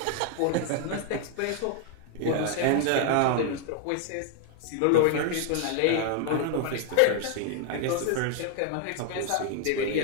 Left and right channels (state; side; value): different; both; correlation 0.00